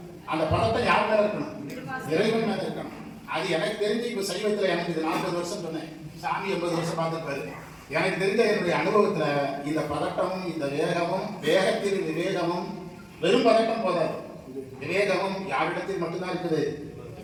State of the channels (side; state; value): both; identical; correlation 1.00